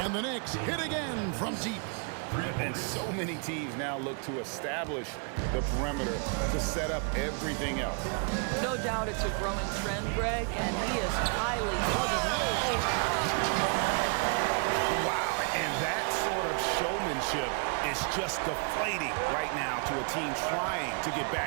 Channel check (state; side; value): quieter; left; 38.9 dB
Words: And the Knicks hit again from deep. And so many teams now look to establish the perimeter to set up everything else. No doubt it's a growing trend, Greg, and he is highly... Wow, and that sort of showmanship is just deflating right now to a team trying to get